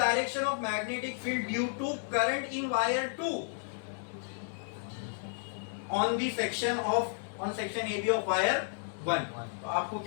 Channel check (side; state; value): right; silent; 56 dB below the other